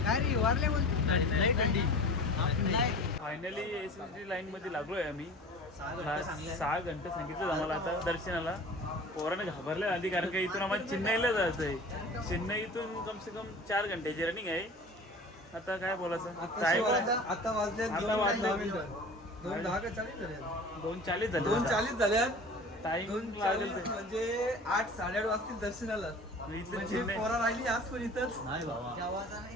काय रे? वारले बोलतो. फायनली SSD लाईन मध्ये लागलोय आम्ही. 6 घंटे सांगितलं आम्हाला आता दर्शनाला. पोराने घाबरले आधी कारण का इथून आम्हाला चेन्नईला जायचंय. चेन्नईतून कम से कम 4 घंट्याची रनिंग आहे. आता काय बोलायचं. आता वाजले 2:40 झाले. 2:40 झाल्यात. टाइम 2:40 म्हणजे 8, 8:30 वाजतील दर्शनाला. इथलं पोरा राहिली आज पण इथंच.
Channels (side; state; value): both; normal; correlation 0.40